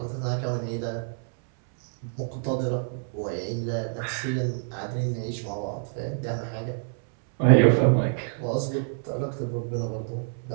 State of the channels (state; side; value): silent; left; 60 dB below the other